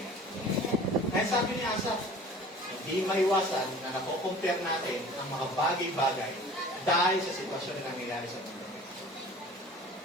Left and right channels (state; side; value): normal; both; correlation 0.44